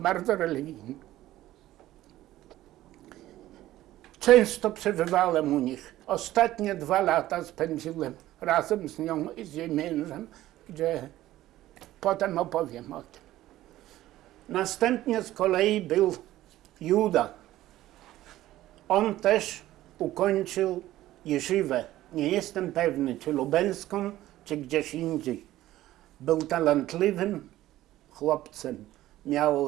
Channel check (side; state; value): left; quieter; 14.9 dB